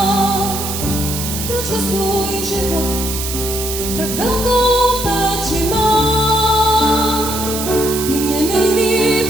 proč o svůj život tak velkou péči mám? Ty mě nejlíp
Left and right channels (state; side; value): noise; right; hiss, 5 dB below the sound